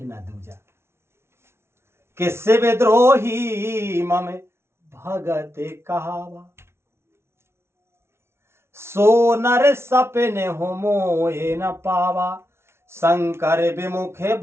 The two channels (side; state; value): left; late; 0.12 ms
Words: दूजा। कि शिव द्रोही मम भगत कहावा, सो नर सपने हो मोहे न पावा। शंकर विमुखे